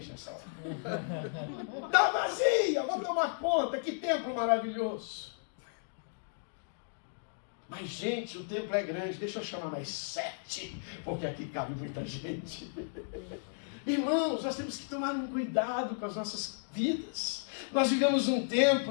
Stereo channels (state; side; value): silent; right; digital silence